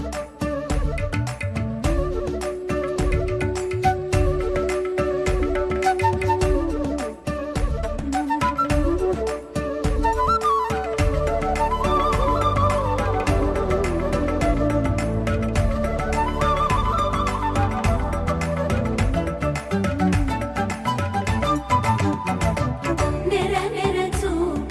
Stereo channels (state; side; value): identical; both; correlation 1.00